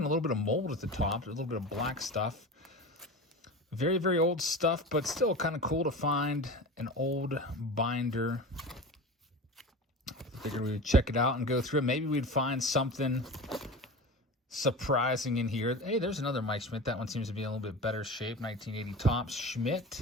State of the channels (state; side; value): normal; both; correlation 0.31